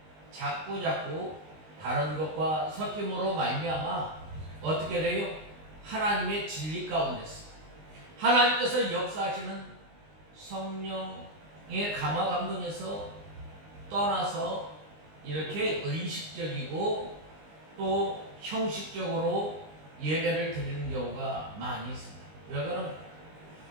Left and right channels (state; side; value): late; left; 19 ms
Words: 자꾸 다른 것과 섞임으로 말미암아 어떻게 돼요? 하나님의 진리 가운데서 하나님께서 역사하시는 성령의 감화 감동에서 떠나서 이렇게 의식적이고 또 형식적으로 예배를 드리는 경우가 많이 있습니다. 왜 그러면